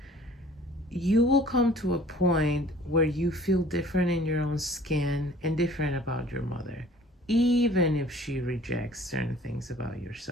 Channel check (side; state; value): both; normal; correlation 0.51